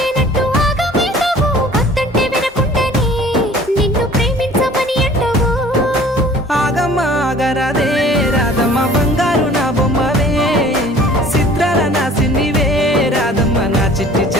ఆగరాదే రాధమ్మ బంగారు నా బొమ్మవే చిత్రాల నా సిన్నివే రాధమ్మ నా చిట్టి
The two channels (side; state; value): both; normal; correlation 0.50